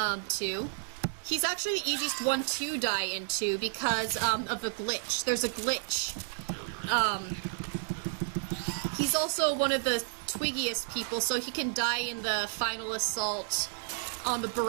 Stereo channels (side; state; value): left; silent; digital silence